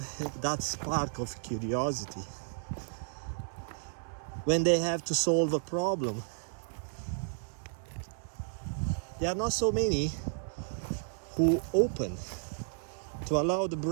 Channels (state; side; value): silent; left; 56 dB below the other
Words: that spark of curiosity when they have to solve a problem. There are not so many who open to allow the